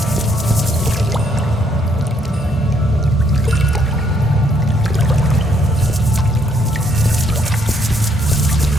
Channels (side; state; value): both; normal; correlation 0.70